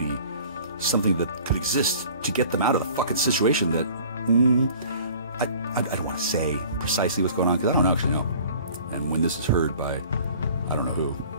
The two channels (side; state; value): both; inverted; correlation -0.48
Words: something that could exist, to get them out of the fucking situation that I don't want to say precisely what's going on because I don't actually know. And when this is heard by I don't know who,